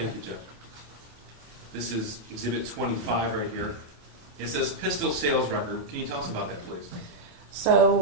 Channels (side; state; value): left; late; 28 ms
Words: you, Jeff. This is Exhibit 25 right here. It says pistol sales record. Can you tell us about that, please?